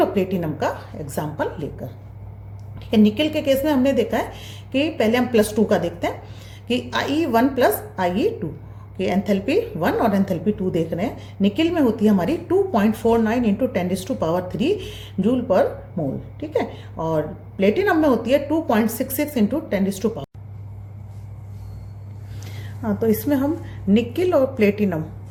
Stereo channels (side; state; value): both; identical; correlation 1.00